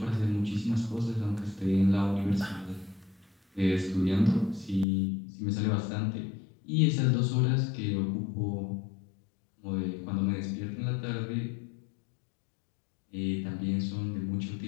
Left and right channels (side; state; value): right; drops out; at 4.9 s